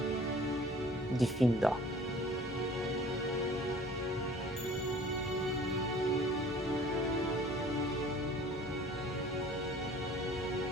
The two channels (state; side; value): normal; both; correlation 0.49